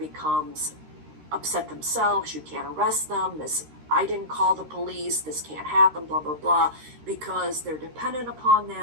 upset themselves. You can't arrest them. I didn't call the police. This can't happen, blah, blah, blah, because they're dependent upon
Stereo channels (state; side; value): late; left; 13 ms